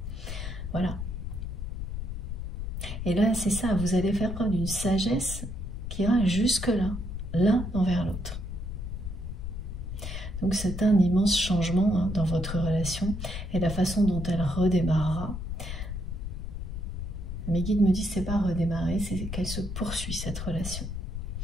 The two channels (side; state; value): left; noise; rumble, 6 dB below the sound